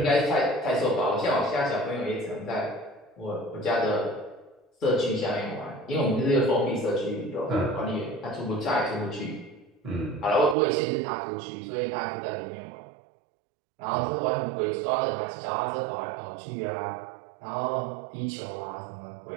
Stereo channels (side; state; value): left; drops out; at 10.6 s